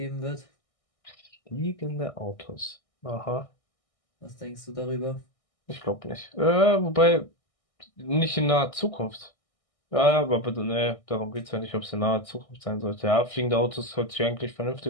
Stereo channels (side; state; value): right; late; 1.6 ms